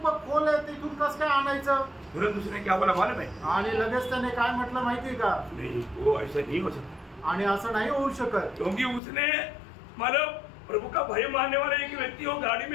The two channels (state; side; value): drops out; right; at 9.0 s